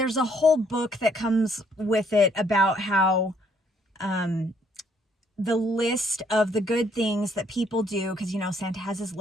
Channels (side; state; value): both; normal; correlation 0.67